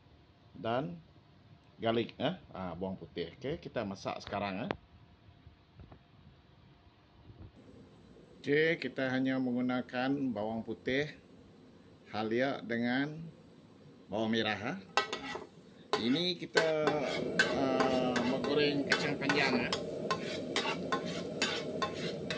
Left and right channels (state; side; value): identical; both; correlation 1.00